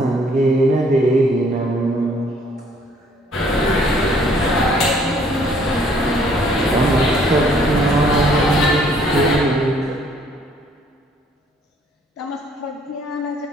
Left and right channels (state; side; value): normal; both; correlation 0.62